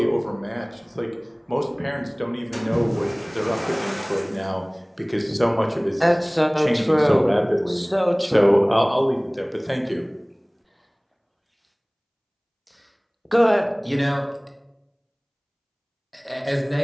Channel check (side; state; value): both; identical; correlation 1.00